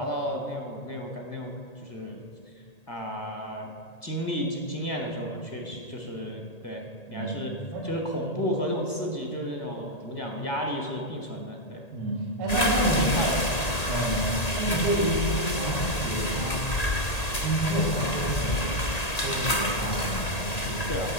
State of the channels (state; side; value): late; right; 1.8 ms